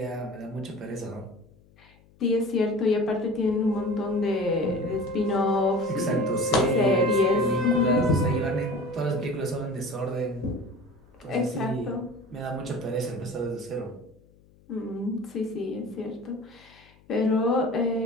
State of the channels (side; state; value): left; noise; hum, 29 dB below the sound